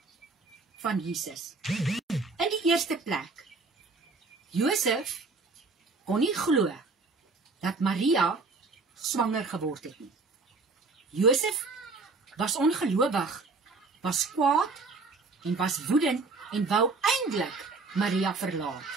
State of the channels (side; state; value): left; quieter; 3.9 dB